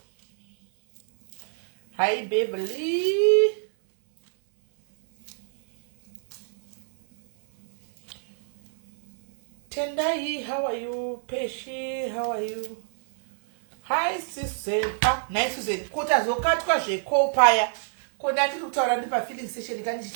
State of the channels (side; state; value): left; silent; 61 dB below the other